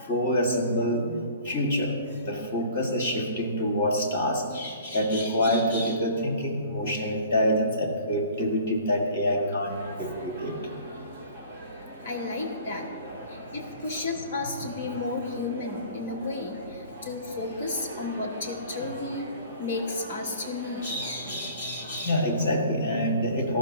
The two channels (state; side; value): inverted; both; correlation -0.47